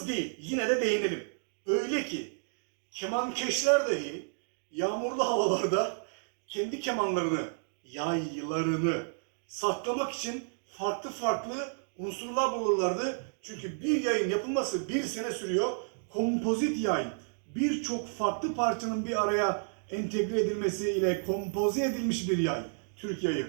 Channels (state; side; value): silent; left; digital silence